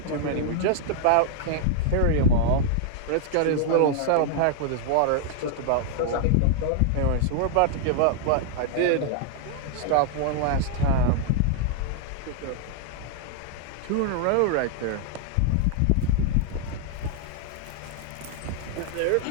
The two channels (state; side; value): different; both; correlation 0.00